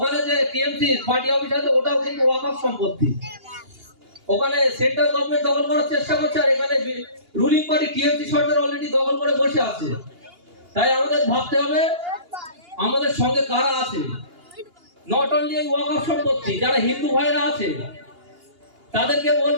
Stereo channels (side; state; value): left; late; 2.8 ms